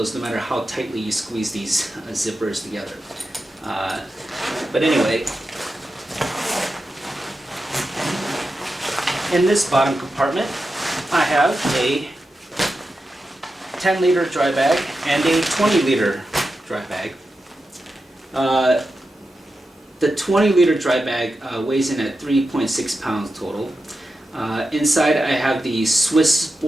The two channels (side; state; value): both; normal; correlation 0.90